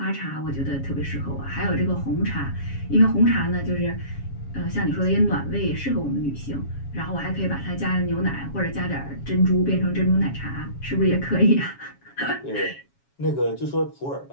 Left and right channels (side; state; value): right; late; 7.3 ms